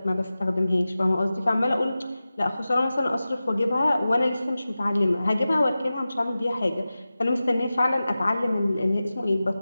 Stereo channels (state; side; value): inverted; both; correlation -0.95